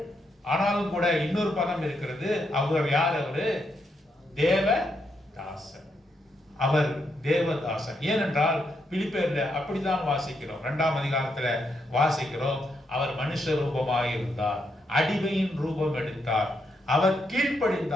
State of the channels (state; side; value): normal; both; correlation 0.80